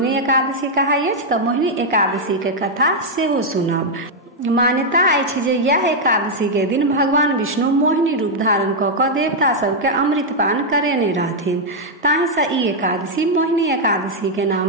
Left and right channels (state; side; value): normal; both; correlation -0.02